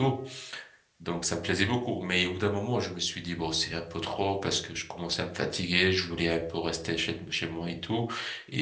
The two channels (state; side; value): identical; both; correlation 1.00